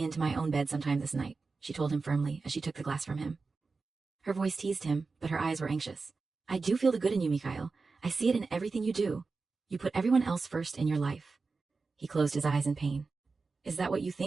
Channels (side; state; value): left; quieter; 4.2 dB